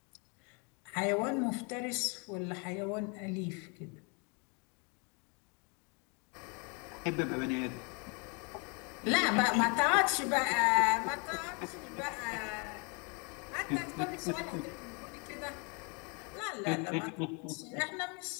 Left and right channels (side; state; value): right; quieter; 33.7 dB